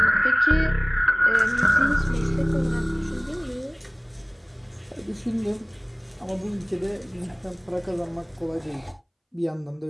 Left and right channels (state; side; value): identical; both; correlation 1.00